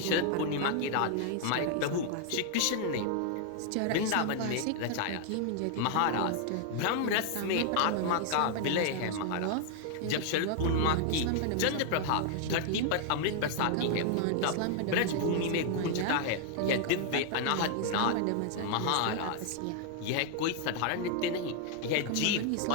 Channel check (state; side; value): different; both; correlation 0.00